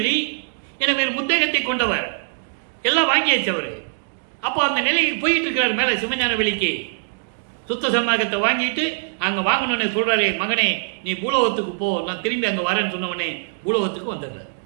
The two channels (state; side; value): silent; left; digital silence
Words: என வேறு முத்தகத்தை கொண்டவர். எல்லாம் வாங்கியாச்சு அவரு. அப்போ அந்த நிலைக்கு போயிட்டு இருக்கிறார். மேல சிவஞான வெளிக்கு சுத்த சன்மார்க்கத்தை வாங்கிட்டு அங்க வாங்கணும்னு சொல்றாரு. மகனே, நீ பூலோகத்துக்கு போ, நான் திரும்பி அங்க வரேன்னு சொன்னவனே பூலோகத்துக்கு வந்துடுறாரு.